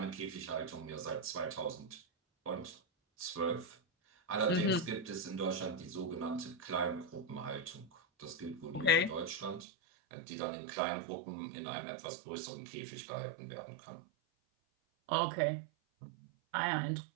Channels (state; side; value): drops out; left; at 9.7 s